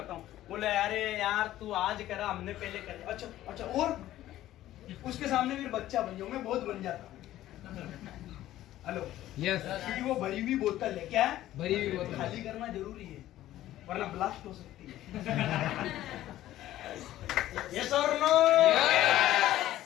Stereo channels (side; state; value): right; quieter; 14.0 dB